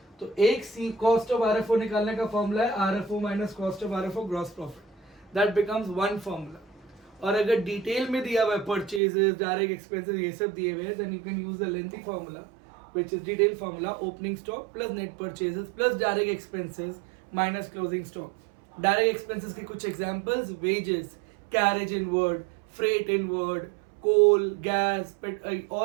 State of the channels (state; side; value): drops out; left; at 9.0 s